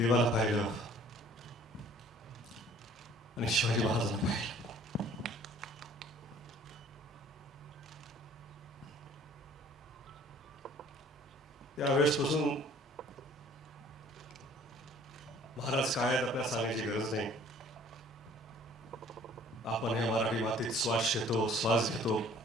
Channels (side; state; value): both; normal; correlation 0.54